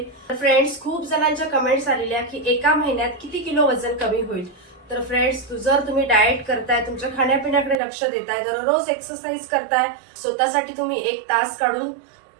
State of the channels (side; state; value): left; drops out; at 7.8 s